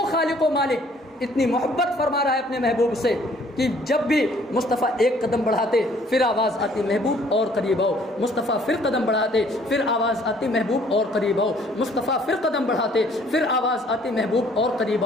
خالق و مالک اتنی محبت فرما رہا ہے اپنے محبوب سے کہ جب بھی مصطفیٰ ایک قدم بڑھاتے پھر آواز آتی محبوب اور قریب آؤ. مصطفیٰ پھر قدم بڑھاتے پھر آواز آتی محبوب اور قریب آؤ. مصطفیٰ پھر قدم بڑھاتے پھر آواز آتی محبوب اور قریب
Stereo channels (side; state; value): both; normal; correlation 0.59